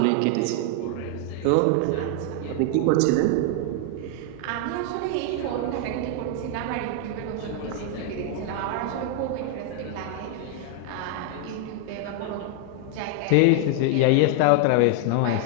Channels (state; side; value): different; both; correlation 0.00